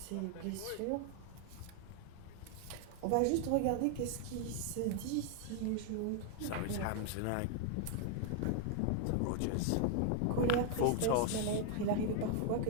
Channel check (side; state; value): both; different; correlation 0.00